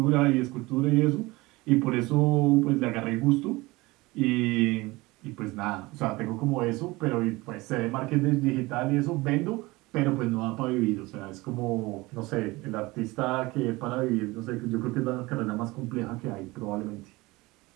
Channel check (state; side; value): quieter; left; 21.7 dB